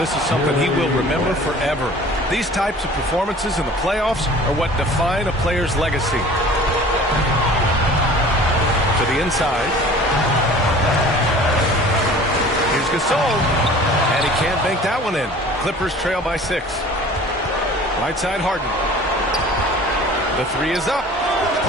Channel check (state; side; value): normal; both; correlation 0.46